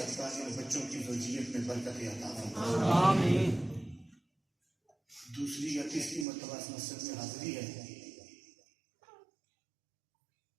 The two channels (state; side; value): drops out; left; at 6.2 s